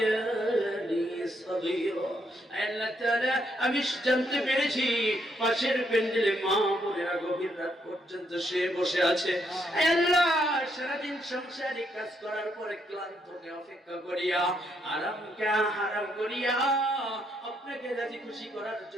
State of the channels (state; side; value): normal; both; correlation 0.75